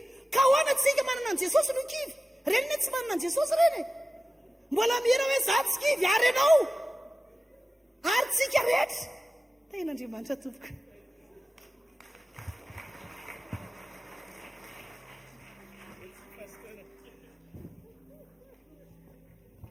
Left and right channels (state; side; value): normal; both; correlation 0.95